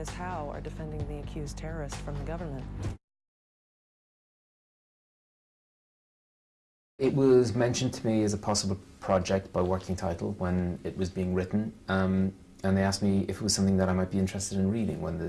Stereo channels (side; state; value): both; identical; correlation 1.00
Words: Howe are defending the accused terrorist from the government. It was mentioned to me as a possible project by working title when it was being written, and they asked me if it was something that I might be interested in reading when